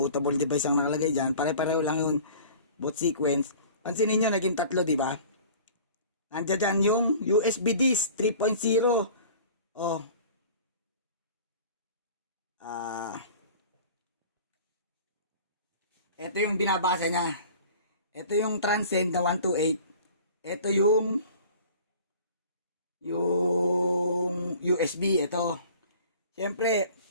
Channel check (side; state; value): both; inverted; correlation -0.45